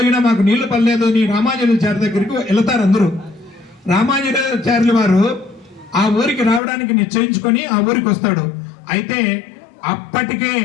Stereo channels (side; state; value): right; drops out; at 6.6 s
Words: మాకు నీళ్లు పడలేదు అని రామానుజాచార్య దగ్గరికి వెళతారు. అందరూ రామానుజాచార్యుల వారు ఆ ఊరికి రావడానికి నిశ్చయించుకొని ఆ ఊరికి వస్తాడు. అయితే అప్పటికే